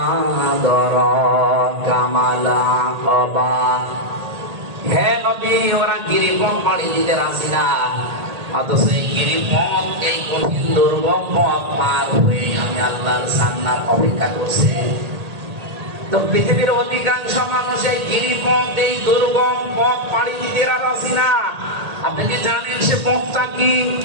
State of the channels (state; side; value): late; left; 1.8 ms